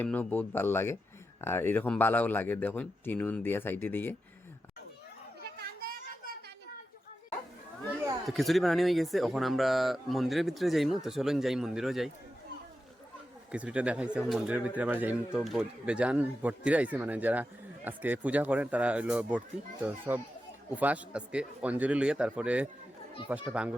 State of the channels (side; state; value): both; normal; correlation 0.90